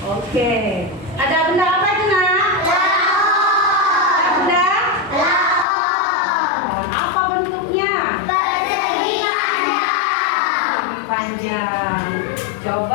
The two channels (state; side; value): drops out; right; at 5.7 s